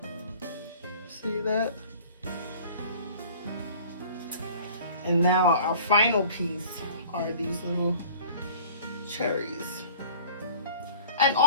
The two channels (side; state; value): both; inverted; correlation -0.47